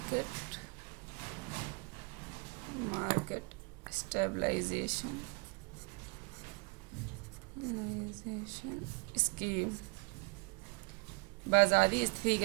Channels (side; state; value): left; quieter; 30.2 dB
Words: मार्केट स्टेबलाइजेशन स्कीम, बाजारी